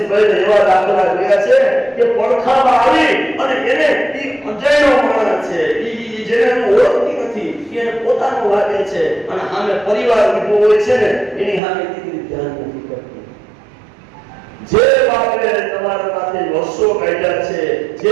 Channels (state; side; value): drops out; left; at 11.6 s